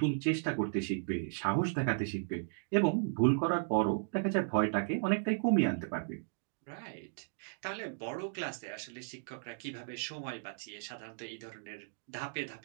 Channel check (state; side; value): silent; left; digital silence